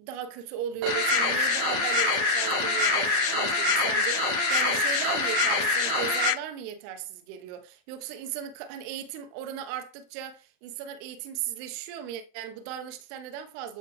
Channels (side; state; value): left; late; 38 ms